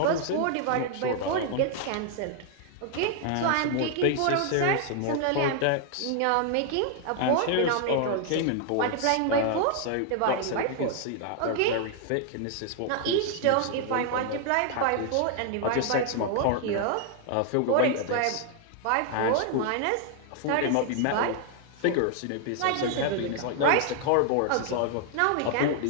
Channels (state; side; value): different; both; correlation 0.00